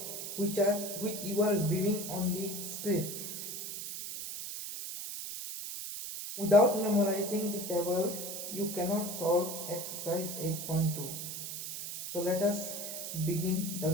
which you are viewing on the screen. Without memorizing the table, you cannot solve exercise 8.2. So let us begin the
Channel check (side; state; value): right; noise; hiss, 6 dB below the sound